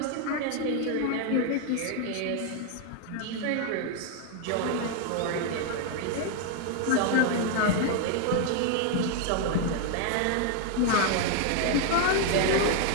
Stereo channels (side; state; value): both; different; correlation 0.00